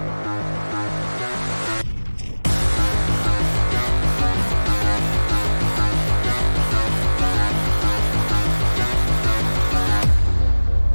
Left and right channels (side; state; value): both; inverted; correlation -1.00